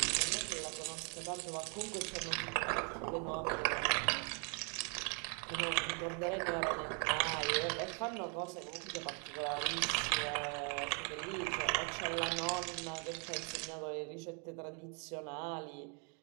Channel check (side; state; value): left; quieter; 38.0 dB